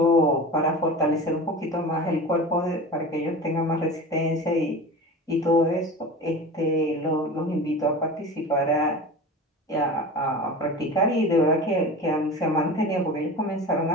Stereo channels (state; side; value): normal; both; correlation 0.33